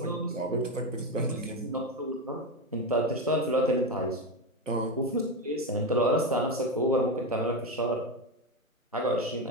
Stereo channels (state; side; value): normal; both; correlation 0.14